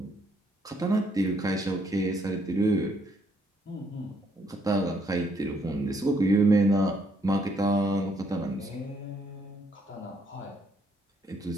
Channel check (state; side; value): normal; both; correlation 0.70